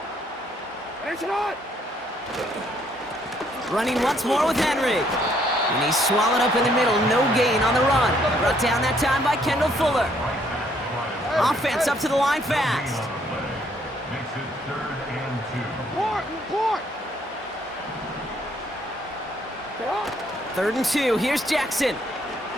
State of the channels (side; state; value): both; normal; correlation 0.68